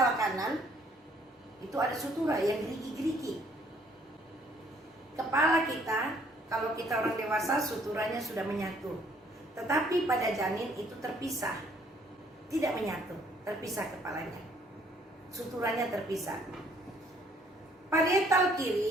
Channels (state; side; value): normal; both; correlation 0.63